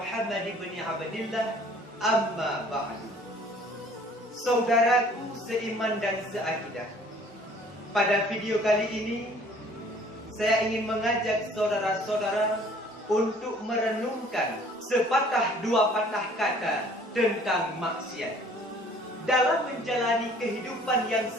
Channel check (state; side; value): normal; both; correlation 0.54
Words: ibn Abdillah, amma ba'du. Saudaraku seiman dan seakidah, pada video kali ini saya ingin mengajak saudara-saudara untuk merenungkan sepatah dua patah kata tentang maksiat. Dalam menjalani kehidupan yang